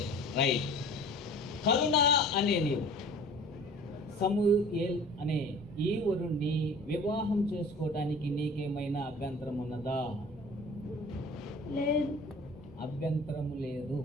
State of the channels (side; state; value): both; normal; correlation 0.44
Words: రైట్. కరుణ అనే నీవు, సమూయేల్ అనే ఈ వరుణ్ణి వివాహం చేసుకోవడానికి నీకేమైనా అభ్యంతరం ఉన్నదా? లేదు. అభ్యంతరము లేదు.